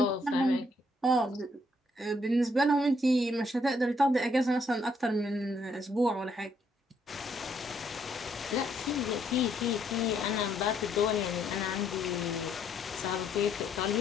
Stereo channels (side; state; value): both; normal; correlation 0.70